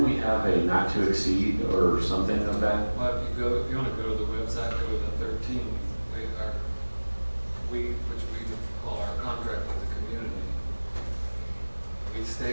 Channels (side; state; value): both; inverted; correlation -1.00